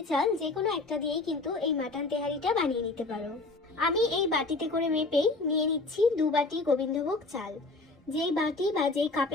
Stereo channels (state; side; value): quieter; right; 3.4 dB